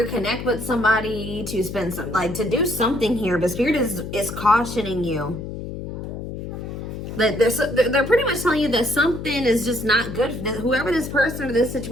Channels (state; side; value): noise; left; hum, 8 dB below the sound